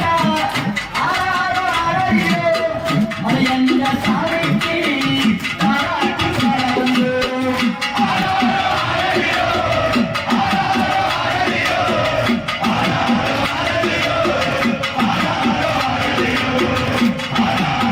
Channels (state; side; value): identical; both; correlation 1.00